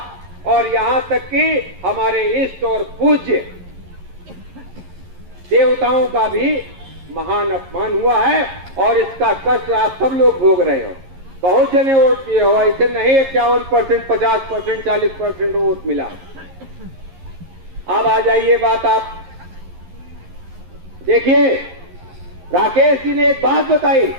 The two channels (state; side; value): late; left; 11 ms